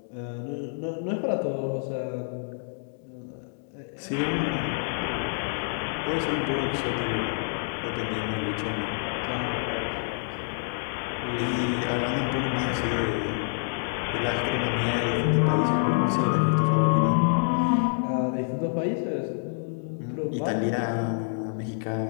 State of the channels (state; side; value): silent; right; digital silence